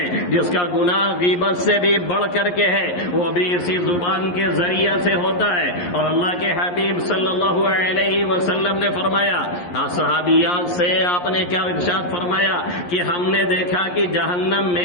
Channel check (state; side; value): late; right; 11 ms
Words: جس کا گناہ غیبت سے بھی بڑھ کر کے ہے، وہ بھی اسی زبان کے ذریعے سے ہوتا ہے۔ اور اللہ کے حبیب صلی اللہ علیہ وسلم نے فرمایا، صحابیات سے آپ نے کیا ارشاد فرمایا کہ ہم نے دیکھا کہ جہنم